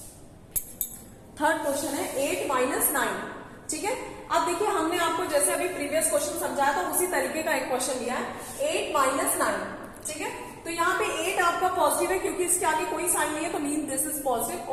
थर्ड क्वेश्चन है 8 माइनस 9, ठीक है। अब देखिए हमने आपको जैसे अभी प्रीवियस क्वेश्चन समझाया था उसी तरीके का एक क्वेश्चन लिया है 8 माइनस 9, ठीक है। तो यहाँ पे 8 आपका पॉजिटिव है क्योंकि इसके आगे कोई साइन नहीं है, तो मीन दिस इज पॉजिटिव,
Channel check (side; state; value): both; identical; correlation 1.00